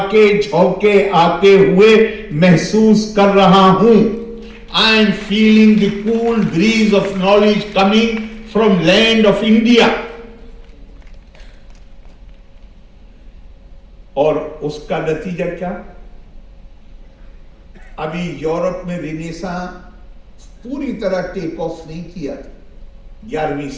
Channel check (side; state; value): both; identical; correlation 1.00